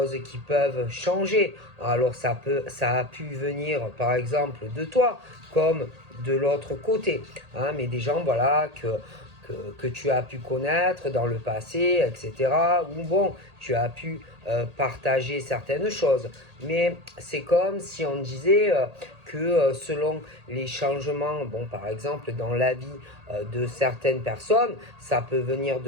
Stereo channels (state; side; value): late; left; 1.8 ms